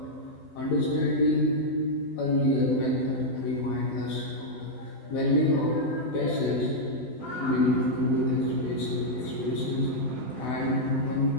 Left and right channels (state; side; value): late; right; 12 ms